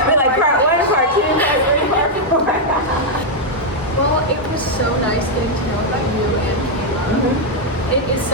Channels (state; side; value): normal; both; correlation -0.02